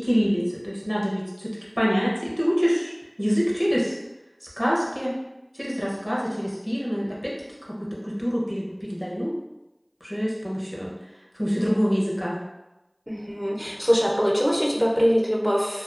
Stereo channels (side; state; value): both; identical; correlation 1.00